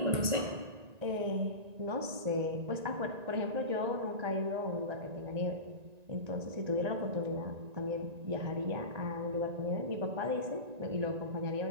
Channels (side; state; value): left; late; 1.9 ms